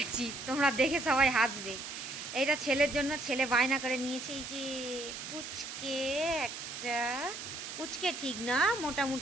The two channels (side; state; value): right; noise; hiss, 8 dB below the sound